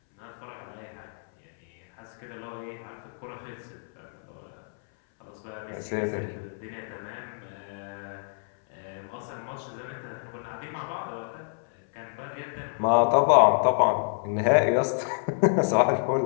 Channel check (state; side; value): silent; right; 59 dB below the other